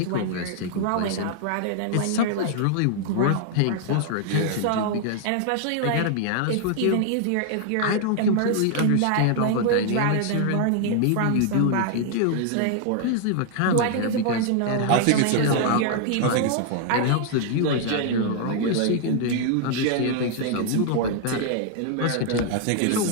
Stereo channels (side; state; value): both; different; correlation 0.00